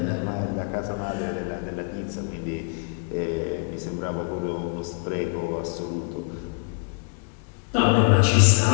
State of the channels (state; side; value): quieter; right; 35.7 dB